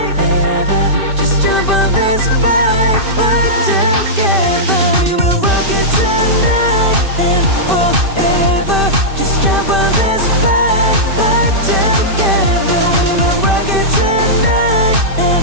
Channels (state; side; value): late; left; 2.6 ms